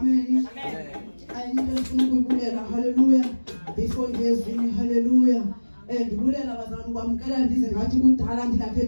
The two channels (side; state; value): both; inverted; correlation -1.00